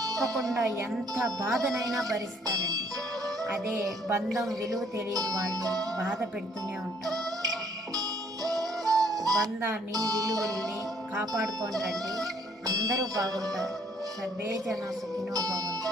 ఎంత బాధనైనా భరిస్తారండి. అదే బంధం విలువ తెలియని వాళ్ళు బాధ పెడుతూనే ఉంటారు. బంధాన్ని విలువల్ని కాపాడుకోండి. అందరూ బాగుంటారు. సర్వే జన సుఖినో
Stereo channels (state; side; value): normal; both; correlation 0.64